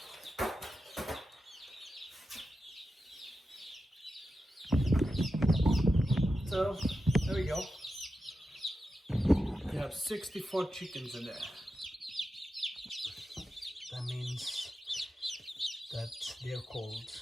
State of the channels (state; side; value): normal; both; correlation 0.90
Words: So there we go. We have 64 chickens in there. That means that they're cold.